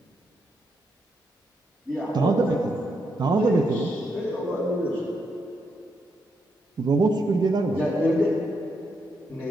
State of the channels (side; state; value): both; normal; correlation 0.80